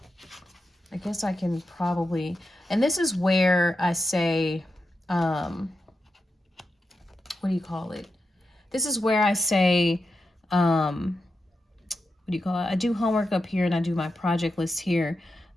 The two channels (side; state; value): both; normal; correlation 0.89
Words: guess I can probably, and this is where I say, what do you call it? This is where I say, what do you call it? I do homework up here and I do my project list here.